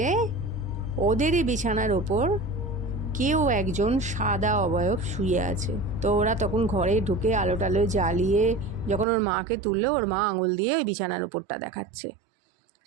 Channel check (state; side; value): drops out; left; at 9.1 s